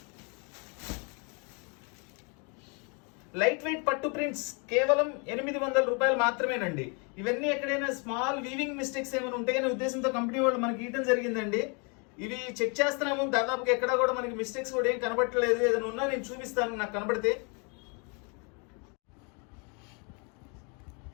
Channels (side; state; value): right; quieter; 34.4 dB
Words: లైట్ వెయిట్ పట్టు ప్రింట్స్ కేవలం 800 రూపాయలు మాత్రమేనండి. ఇవన్నీ ఎక్కడైనా స్మాల్ వీవింగ్ మిస్టేక్స్ ఏమైనా ఉంటాయనే ఉద్దేశంతో కంపెనీ వాళ్ళు మనకి ఇవ్వడం జరిగిందండి. ఇవి చెక్ చేస్తున్నాము, దాదాపుగా ఎక్కడా కూడా మనకి మిస్టేక్స్ కూడా ఏం కనబడట్లేదు. ఏదైనా ఉన్నా నేను చూపిస్తాను నాకు కనబడితే.